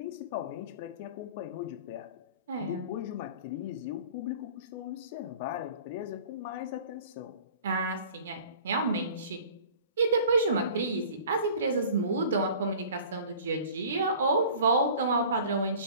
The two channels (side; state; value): both; inverted; correlation -0.45